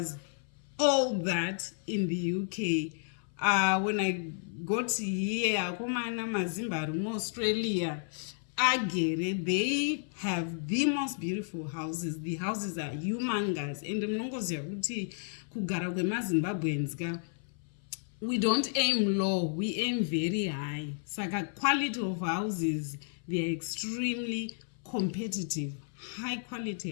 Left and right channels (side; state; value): right; silent; 56 dB below the other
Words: all that in the UK. When I got here, Akomana Mazimba Australia, they have the most beautiful houses. The houses are humongous. And we don't aim low, we aim very high. Saka quality of houses, they are extremely competitive, high quality